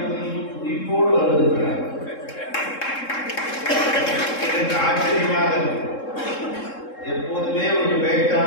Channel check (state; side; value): late; right; 3.7 ms